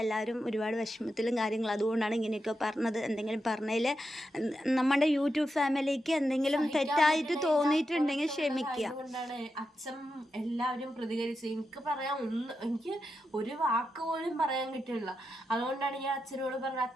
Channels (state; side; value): normal; both; correlation 0.87